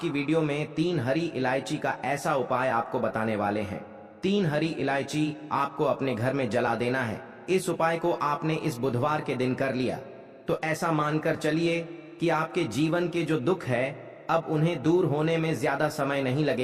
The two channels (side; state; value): both; identical; correlation 1.00